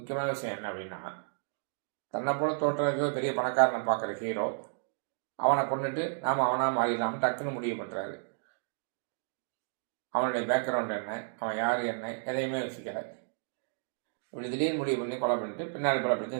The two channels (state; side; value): silent; left; digital silence